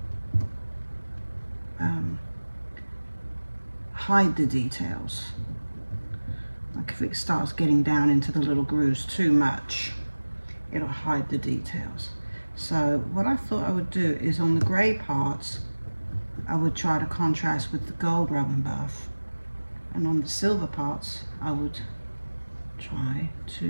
hide the details. Like if it starts getting down into the little grooves too much, it'll hide the details. So what I thought I would do is on the gray parts, I would try to contrast with the gold rub and buff. And on the silver parts, I would try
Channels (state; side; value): inverted; both; correlation -1.00